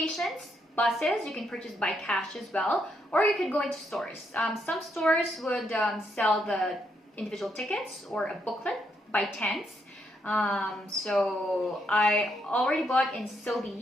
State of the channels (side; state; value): both; normal; correlation 0.77